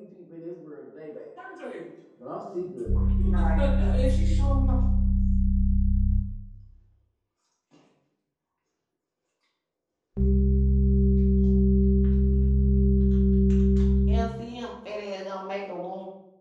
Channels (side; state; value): both; identical; correlation 1.00